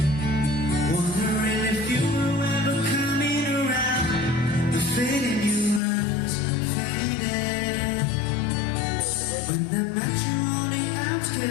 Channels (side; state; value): right; drops out; at 5.8 s